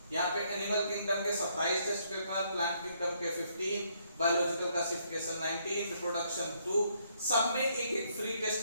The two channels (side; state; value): both; inverted; correlation -0.71